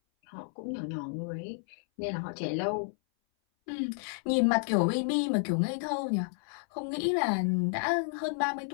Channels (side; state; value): right; silent; 57 dB below the other